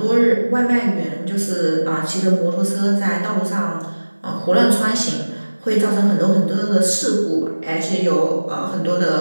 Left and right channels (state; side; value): inverted; both; correlation -1.00